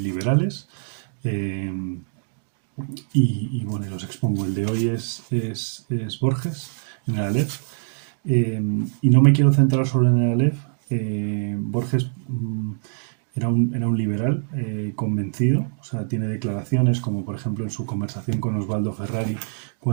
eh, bueno, los expongo. El de hoy es Borges, en el Aleph. Y no me quiero centrar solo en el Aleph. Borges era un liberal convencido, o sea, tiene declaraciones como por ejemplo en su conversación con Osvaldo Ferrari,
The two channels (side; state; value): left; silent; digital silence